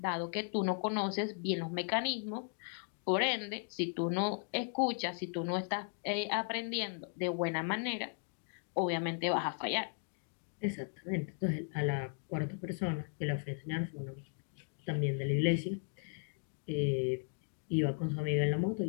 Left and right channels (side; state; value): right; silent; 53 dB below the other